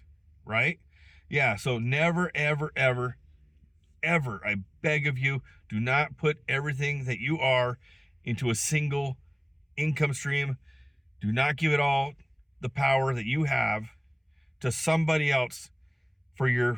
right? Yeah, so never, ever, ever, ever, I beg of you, do not put everything that you are into a single income stream. Do not give it all the power that you have to somebody else for your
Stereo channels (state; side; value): identical; both; correlation 1.00